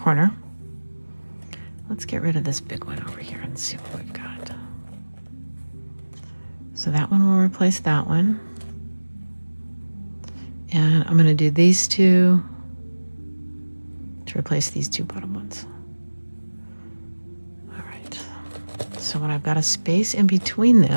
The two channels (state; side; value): inverted; both; correlation -1.00